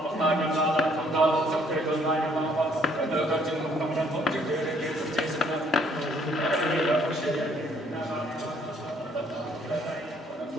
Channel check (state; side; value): normal; both; correlation 0.64